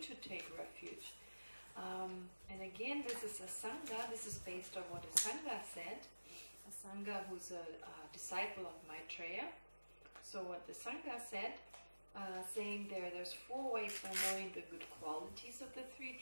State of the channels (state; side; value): inverted; both; correlation -1.00